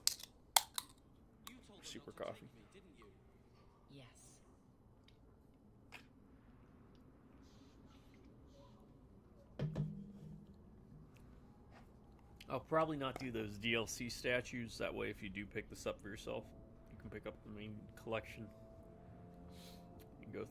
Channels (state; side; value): identical; both; correlation 1.00